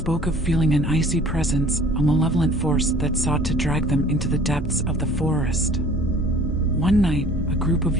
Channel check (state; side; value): normal; both; correlation 0.50